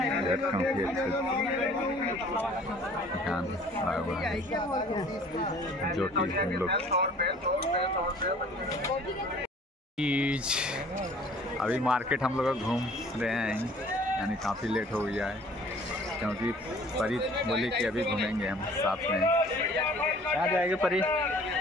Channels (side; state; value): both; normal; correlation 0.52